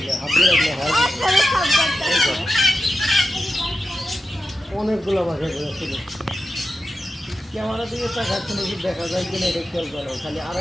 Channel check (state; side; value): normal; both; correlation 0.90